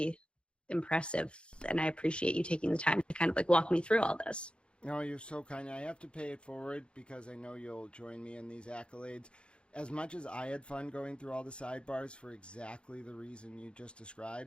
impressive, and I appreciate you taking the time to kind of like walk me through all this. No, you're so kind. I have to pay it forward because I know you'll join me in these accolades. As much as I had fun going through all the sidebars for exactly the reason you just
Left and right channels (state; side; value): late; right; 0.056 ms